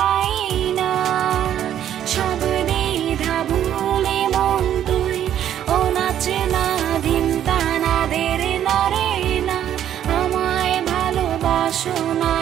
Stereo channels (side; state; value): left; quieter; 10.6 dB